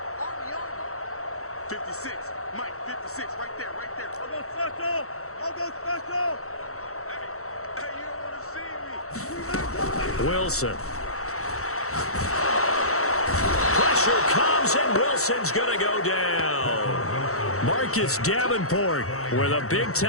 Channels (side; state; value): right; late; 0.64 ms